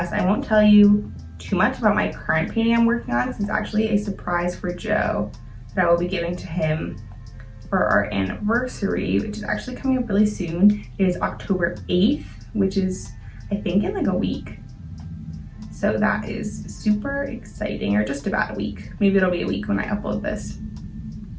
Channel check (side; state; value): both; identical; correlation 1.00